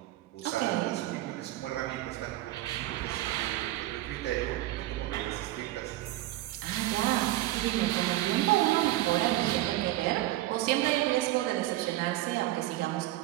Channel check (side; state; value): left; quieter; 16.0 dB